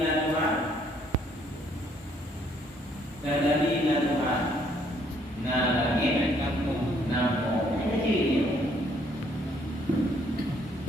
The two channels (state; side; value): normal; both; correlation 0.66